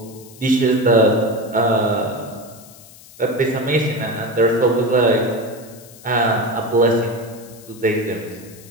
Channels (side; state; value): left; noise; hiss, 21 dB below the sound